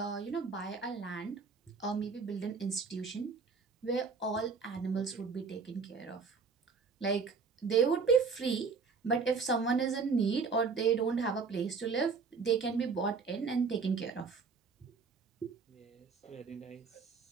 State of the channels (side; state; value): left; quieter; 5.1 dB